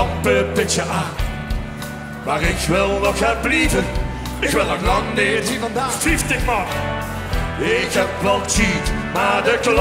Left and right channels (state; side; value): identical; both; correlation 1.00